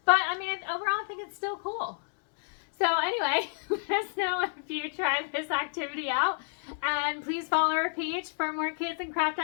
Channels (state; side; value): silent; right; digital silence